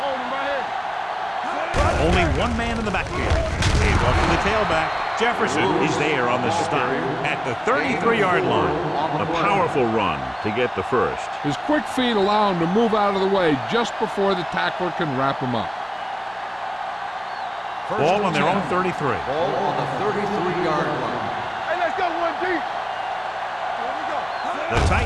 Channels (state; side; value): identical; both; correlation 1.00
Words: Hold him right here. Only one man in the backfield. Hands off to the tailback. Jefferson is there on the stop at the 33-yard line. A powerful run to get the first. His quick feet allow him to move out of the way just before the tackler can wrap him up. Ball on their own 33. Ball on the 33-yard line. Hey, let's go, 1D. The